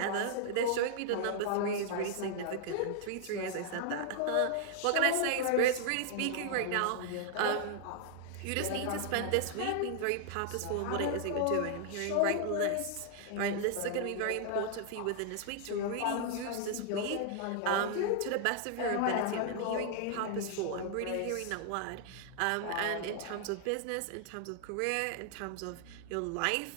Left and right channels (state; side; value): different; both; correlation 0.00